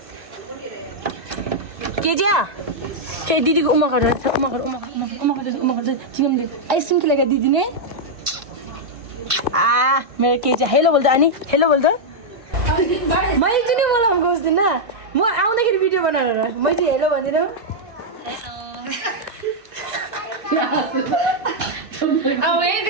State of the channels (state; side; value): late; left; 1.5 ms